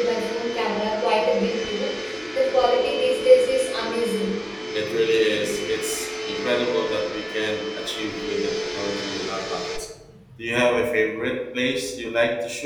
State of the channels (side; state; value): both; identical; correlation 1.00